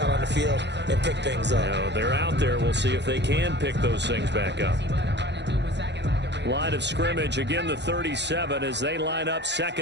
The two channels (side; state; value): left; late; 0.51 ms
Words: on the field and pick things up. Now, they're out there. We'll see if they can pick those things back up. Line of scrimmage, again the 37 as they line up